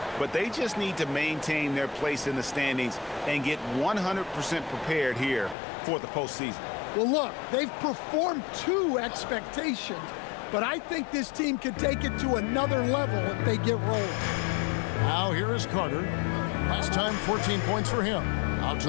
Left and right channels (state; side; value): drops out; right; at 5.6 s